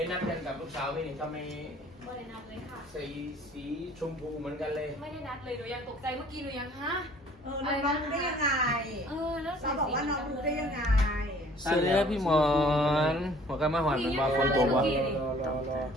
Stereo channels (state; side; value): normal; both; correlation 0.54